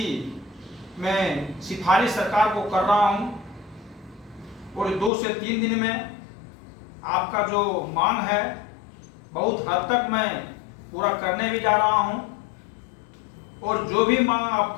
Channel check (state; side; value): drops out; right; at 5.1 s